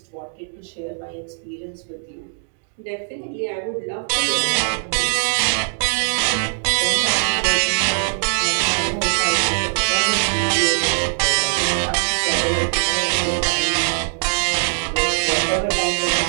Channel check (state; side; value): silent; left; digital silence